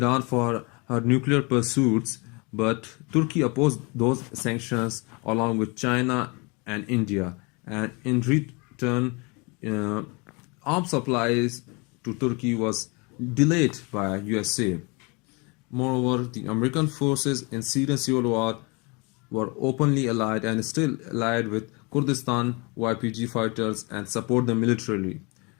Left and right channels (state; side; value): quieter; right; 29.6 dB